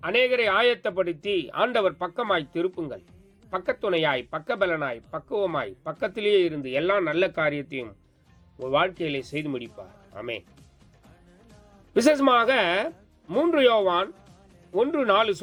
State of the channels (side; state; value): both; identical; correlation 1.00